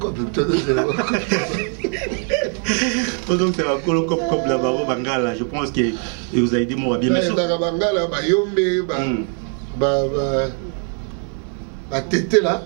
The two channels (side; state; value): left; quieter; 39.8 dB